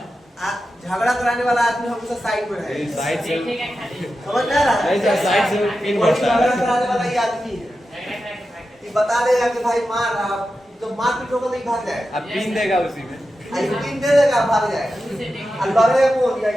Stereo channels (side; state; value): both; normal; correlation 0.91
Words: झगड़ा कराने वाला आदमी हमेशा साइड में रहेगा। साइड से समझ में आ रहा है? नहीं सर, साइड से पिन वही बढ़ता झगड़ा है। कराने वाला ही आदमी है, ये बता देगा कि भाई मार, आप तो मार पीट होगा नहीं भाग जाएगा, अब पिन देगा उसी में। आई पिन दे देगा भाग जाएगा। अब लड़ेगा कौन?